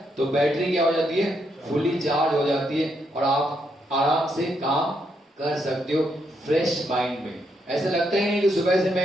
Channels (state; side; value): normal; both; correlation 0.78